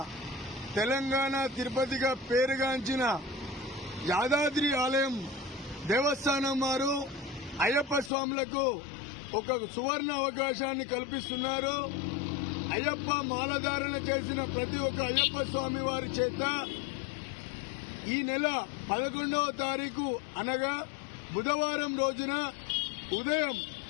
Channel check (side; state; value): right; drops out; at 8.1 s